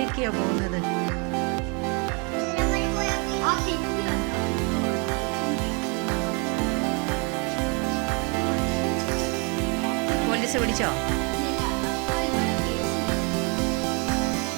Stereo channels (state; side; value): quieter; left; 33.4 dB